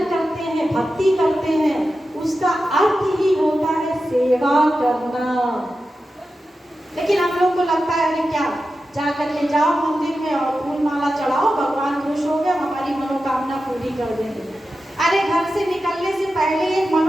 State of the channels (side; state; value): both; normal; correlation 0.92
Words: करते हैं, भक्ति करते हैं, उसका अर्थ ही होता है सेवा करना। लेकिन हम लोग को लगता है अरे क्या, जाकर के जाओ मंदिर में और फूल माला चढ़ाओ, भगवान खुश हो गया, हमारी मनोकामना पूरी कर देंगे। अरे घर से निकलने से पहले एक